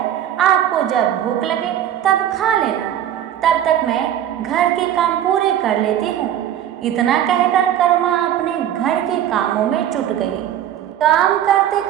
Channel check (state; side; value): quieter; left; 11.0 dB